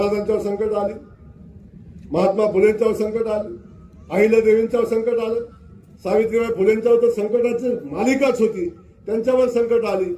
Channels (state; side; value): identical; both; correlation 1.00